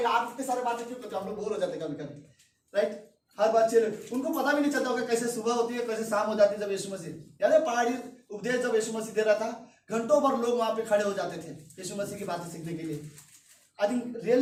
आप इतने सारे बातें क्यों करते हो, हम लोग बोर हो जाते कभी कभी, राइट। हर बात चैलेंज, उनको पता भी नहीं चलता होगा कैसे सुबह होती है कैसे शाम हो जाती है। जब यीशु मसीह, याद है पहाड़ी उपदेश जब यीशु मसीह दे रहा था, घंटों भर लोग वहां पे खड़े हो जाते थे यीशु मसीह की बातें सीखने के लिए। आई थिंक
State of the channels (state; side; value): identical; both; correlation 1.00